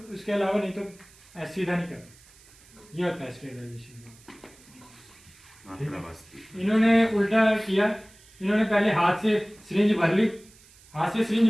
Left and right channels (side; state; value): right; noise; hiss, 25 dB below the sound